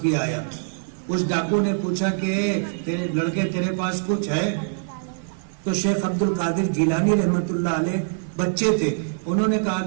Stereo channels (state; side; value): silent; left; 56 dB below the other